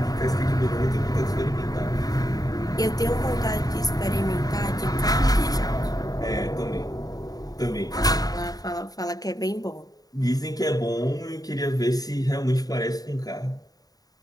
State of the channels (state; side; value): late; right; 0.18 ms